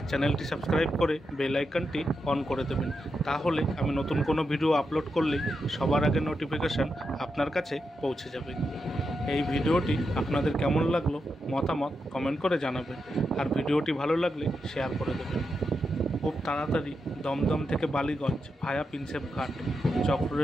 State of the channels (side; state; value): both; normal; correlation 0.86